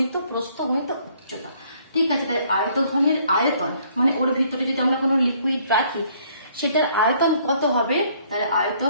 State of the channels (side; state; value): both; inverted; correlation -0.63